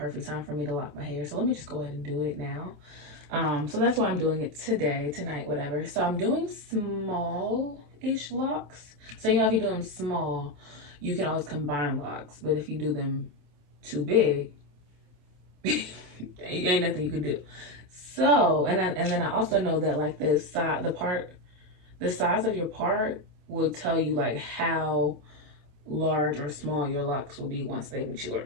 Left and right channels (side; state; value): left; late; 27 ms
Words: time for me to lock my hair, so let me just go ahead and do it now. So that's why I'm doing it today, tonight, whatever. So I'm doing small-ish locks. So you know, if you do them small, you can always combine locks, but if you do them too big, ain't nothing you can do. So and then I also know that like the size of your part will tell you like how large or small your locks will be once they mature.